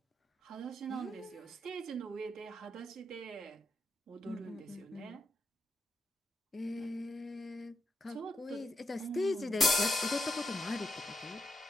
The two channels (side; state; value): both; normal; correlation 0.83